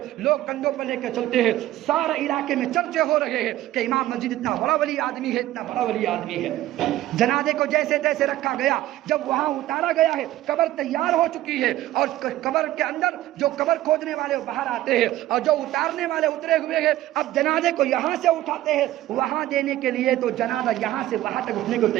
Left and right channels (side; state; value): left; quieter; 14.9 dB